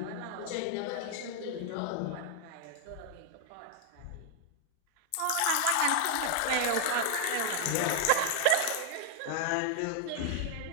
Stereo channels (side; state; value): both; different; correlation 0.00